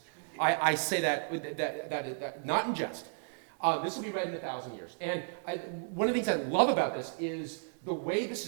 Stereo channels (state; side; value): silent; left; digital silence